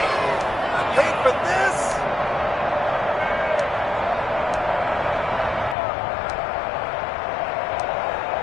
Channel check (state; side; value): drops out; right; at 5.8 s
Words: Wait for this.